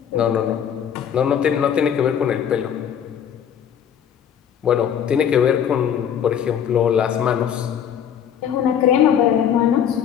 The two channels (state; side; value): quieter; right; 8.8 dB